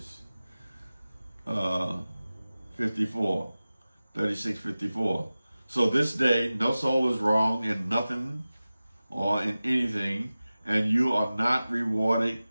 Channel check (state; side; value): inverted; both; correlation -0.96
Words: 54, 36, 54. So this day, no soul is wrong in nothing or in anything, and you are not rewarded